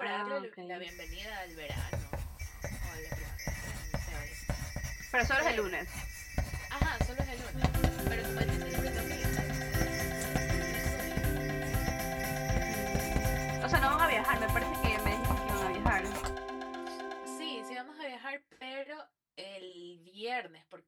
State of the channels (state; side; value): identical; both; correlation 1.00